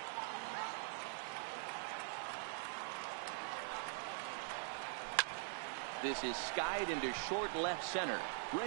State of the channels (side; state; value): left; silent; digital silence